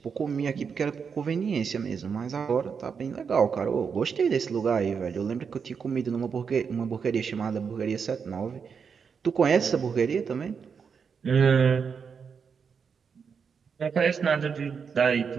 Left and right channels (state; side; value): quieter; left; 6.2 dB